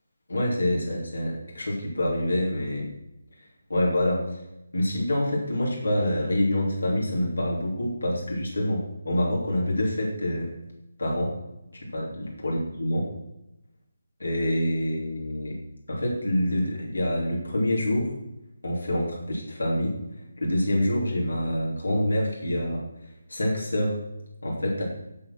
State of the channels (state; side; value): inverted; both; correlation -0.91